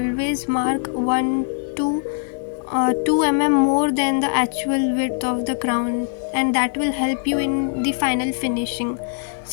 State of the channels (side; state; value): right; silent; 65 dB below the other